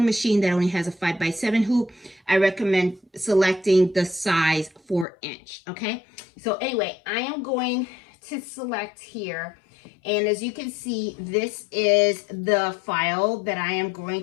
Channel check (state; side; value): drops out; right; at 5.1 s